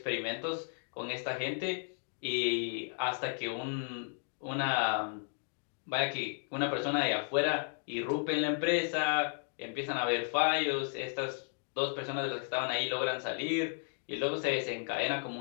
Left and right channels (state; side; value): silent; right; 55 dB below the other